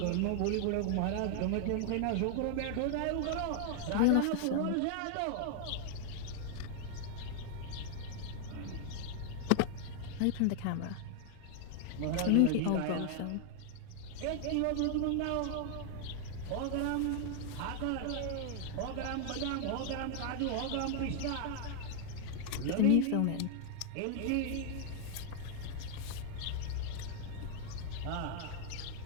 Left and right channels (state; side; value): different; both; correlation 0.00